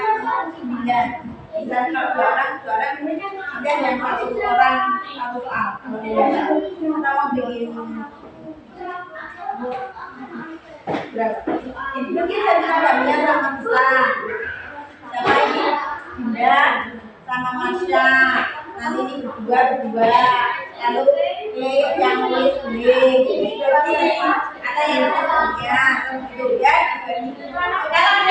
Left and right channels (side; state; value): both; identical; correlation 1.00